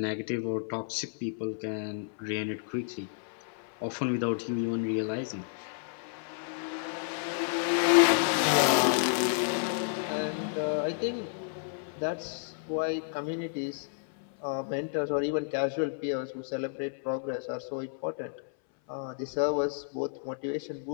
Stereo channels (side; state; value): right; silent; 57 dB below the other